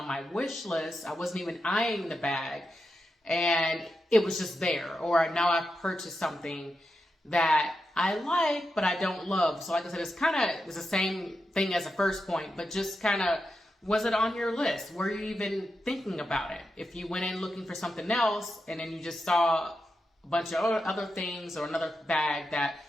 my wish list. I wasn't even eyeing the bag. And it was just there. Or now I've purchased something that I like, but I don't love. So like I said, it's the same thing as the first point, but just kind of, was it on your list? Were you even thinking about it? If you went in looking for something else and then you just saw a bunch of other things or another bag that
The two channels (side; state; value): both; normal; correlation 0.88